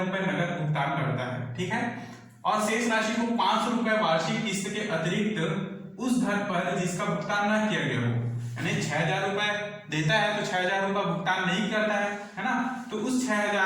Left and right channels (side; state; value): both; identical; correlation 1.00